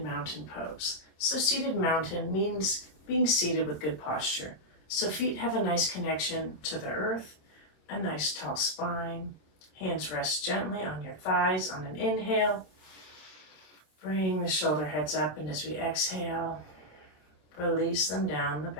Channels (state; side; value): late; right; 26 ms